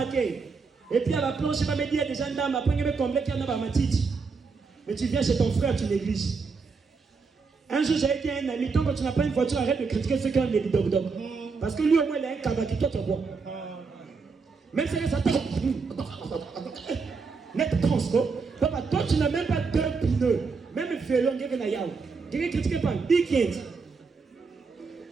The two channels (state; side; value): quieter; left; 4.8 dB